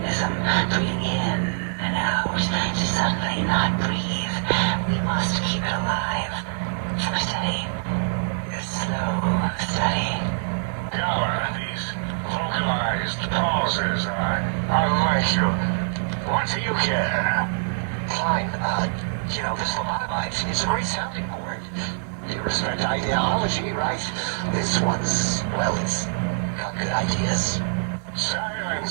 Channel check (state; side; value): silent; left; digital silence